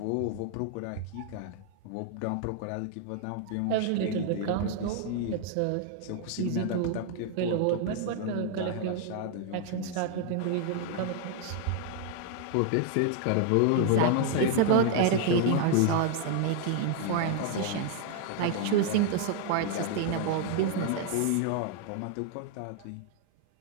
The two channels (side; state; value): both; different; correlation 0.00